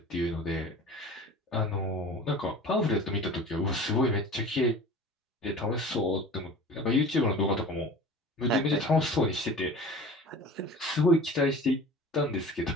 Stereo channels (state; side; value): normal; both; correlation 0.39